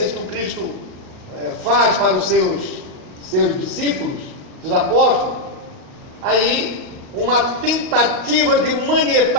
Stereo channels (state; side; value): late; left; 38 ms